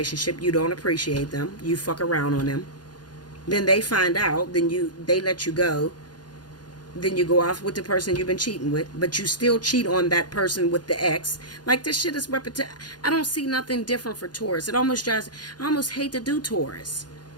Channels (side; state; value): right; late; 0.70 ms